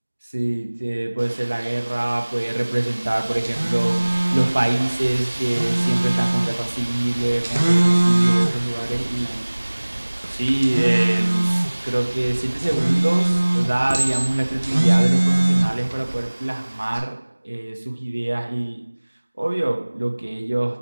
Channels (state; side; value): inverted; both; correlation -1.00